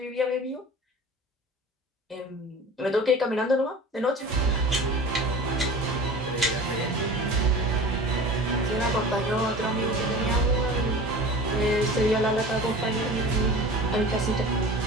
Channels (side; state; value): both; normal; correlation 0.38